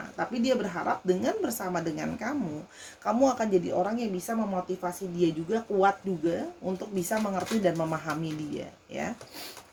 tapi dia berharap dengan bersama dengan kamu akan jadi orang yang bisa memotivasi dia juga, kuat juga untuk bisa mengerti dan memahami dia ya.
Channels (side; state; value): both; identical; correlation 1.00